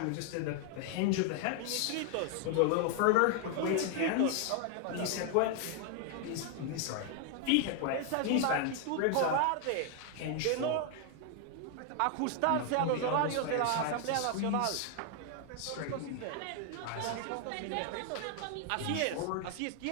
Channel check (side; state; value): both; different; correlation 0.00